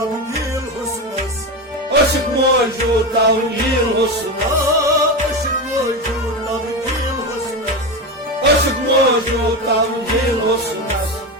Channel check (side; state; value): both; normal; correlation 0.18